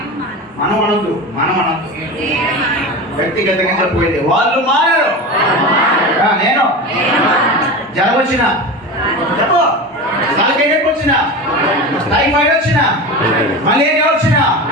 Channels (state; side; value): normal; both; correlation 0.27